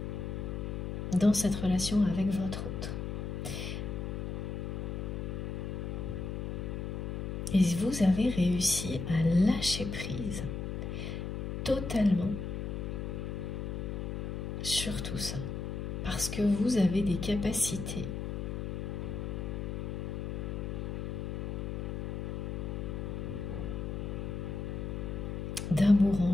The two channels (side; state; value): left; noise; hum, 4 dB below the sound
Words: dans cette relation avec votre autre. Et vous avez réussi à lâcher prise totalement sur tout ça, parce que vous avez des capacités d'amour en